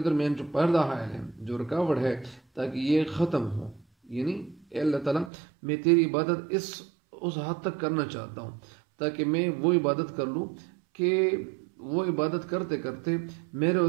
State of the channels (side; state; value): left; drops out; at 5.3 s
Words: جو پردہ حائل ہے، جو رکاوٹ ہے، تاکہ یہ ختم ہو۔ یعنی اے اللہ تعالیٰ، میں تیری عبادت اس حد تک کرنا چاہتا ہوں تاکہ میں وہ عبادت کر لوں کہ وہ عبادت کرتے کرتے میرے اور